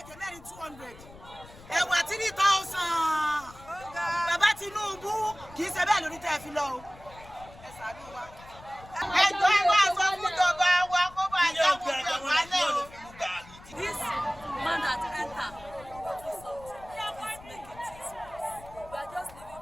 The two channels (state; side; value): noise; left; rumble, 20 dB below the sound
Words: Ẹ̀wà 3,000. Bàbá Tinubu kì í ṣe bẹ́ẹ̀ lórí tẹ́ fi lọ o. Ẹ ṣàánú wa. Ẹjọ́ ẹ wá sọ fún ìjọba wa kó bá yá gbogbo ìwálẹ̀ o. This man that enter do something. He's making things worse. We are just living